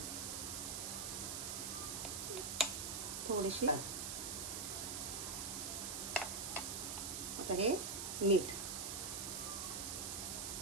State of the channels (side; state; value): right; noise; hiss, 3 dB below the sound